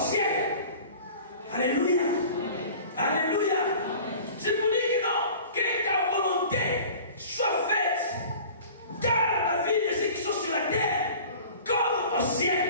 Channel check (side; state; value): both; inverted; correlation -0.43